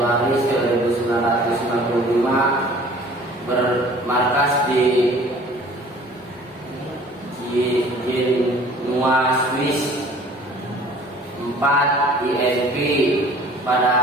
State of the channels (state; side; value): normal; both; correlation 0.50